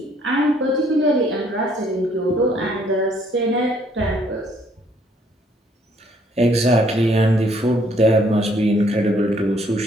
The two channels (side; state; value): both; normal; correlation 0.65